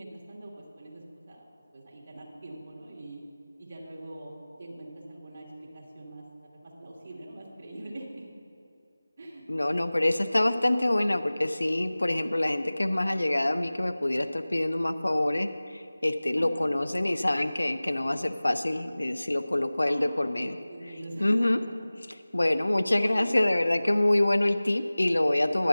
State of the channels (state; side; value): inverted; both; correlation -0.99